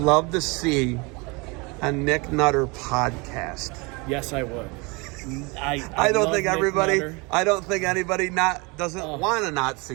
to see a Nick Nutter podcast? Yes, I would. I don't think everybody. I don't think anybody doesn't want to not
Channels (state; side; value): quieter; left; 28.2 dB